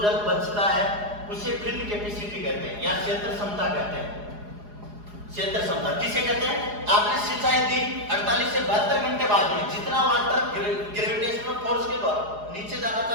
जल बचता है उसे फील्ड कैपेसिटी कहते हैं या क्षेत्र क्षमता कहते हैं। क्षेत्र क्षमता किसे कहते हैं? आपने सिंचाई दी 48 से 72 घंटे बाद में, जितना वाटर ग्रेविटेशनल फोर्स के द्वारा नीचे जाना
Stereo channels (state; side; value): late; left; 4.8 ms